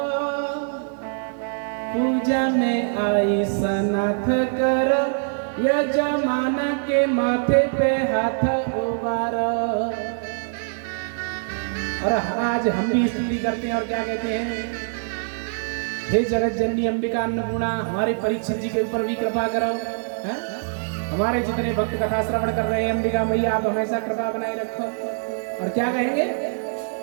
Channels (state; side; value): silent; left; digital silence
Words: पूजा में आई सनाथ कर यजमान के माथे पे हाथ उबारो। और आज हम भी स्तुति करते हैं और क्या कहते हैं? हे जगत जननी अंबिका अन्नपूर्णा, हमारे परीक्षित जी के ऊपर भी कृपा करो। हमारे जितने भक्त कथा श्रवण कर रहे हैं, अंबिका मैया आप हमेशा कृपा बनाए रखो। और क्या कहेंगे?